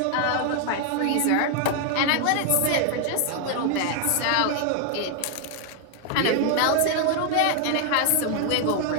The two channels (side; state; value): both; different; correlation 0.00